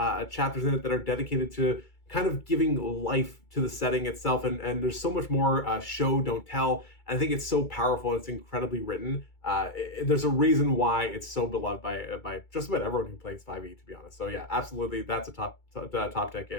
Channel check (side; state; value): right; late; 2.3 ms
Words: chapters in it that are dedicated to kind of giving life to the setting itself, and there's so much more show, don't tell. And I think it's so powerful. It's incredibly written. There's a reason why it's so beloved by just about everyone who plays 5e, to be honest. So yeah, absolutely, that's a top deck